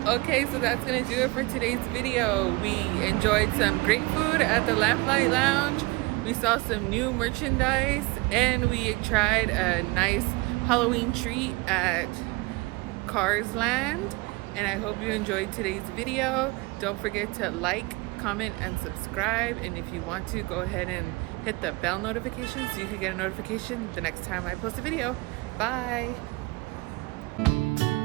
Okay, so that's gonna do it for today's video. We enjoyed some great food at the Lamplight Lounge. We saw some new merchandise, and we tried a nice Halloween treat at Cars Land. And I hope you enjoyed today's video. Don't forget to like, comment, and subscribe. And if you want to, go ahead and hit the bell notification so you can get a notification the next time I post a video. Bye.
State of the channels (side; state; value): left; quieter; 23.8 dB